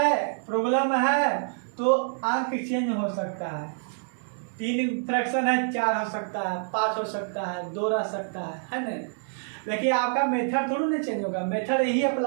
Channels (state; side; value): silent; left; digital silence